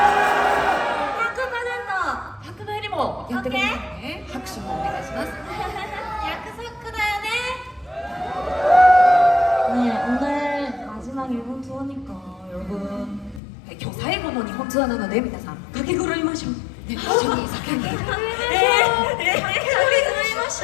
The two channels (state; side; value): drops out; right; at 13.4 s